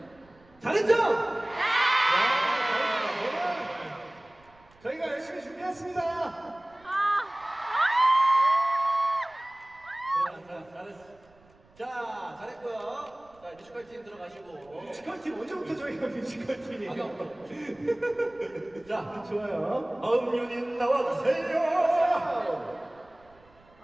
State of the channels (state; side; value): noise; right; rumble, 29 dB below the sound